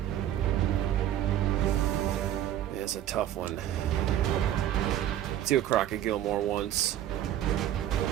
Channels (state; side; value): quieter; left; 11.8 dB